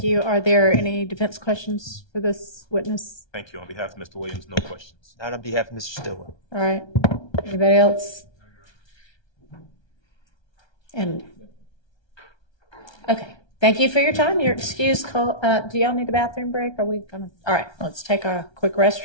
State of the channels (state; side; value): late; right; 1.3 ms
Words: you. Are there any defense questions for this witness? Thank you. On behalf of Mr. Williams, no questions. Not on behalf of Mr. Stillwell. All right. Anybody else? And okay. Thank you for your time. You're excused. Do y'all need a bathroom break? Are we gonna? All right. Let's take a quick